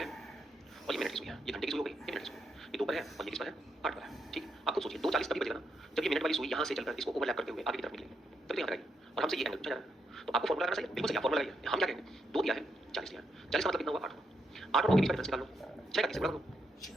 और ये मिनट की सुई है, ये घंटे की सुई हो गई, ये मिनट की सुई, ये 2 पर है और ये किस पर है, 8 पर है। ठीक, आप खुद सोचिए 2:40 तभी बजेगा ना जब ये मिनट वाली सुई यहाँ से चलकर इसको ओवरलैप करते हुए आगे की तरफ निकलेगी, तभी यहाँ आएगी और हमसे ये एंगल पूछा जा रहा है। तो आपको फॉर्मूला लगाना चाहिए, बिल्कुल सही, फॉर्मूला लगाइए। हम क्या कहेंगे, 2 दिया है, 40 दिया है, 40 का मतलब कितना हुआ, 8 हुआ। 8 और 9 के बीच का डिफरेंस निकाल लो, 6 का किससे गुणा करो,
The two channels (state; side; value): normal; both; correlation 0.80